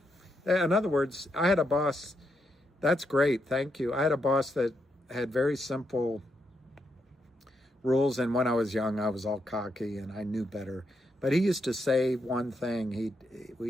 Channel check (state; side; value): normal; both; correlation 0.81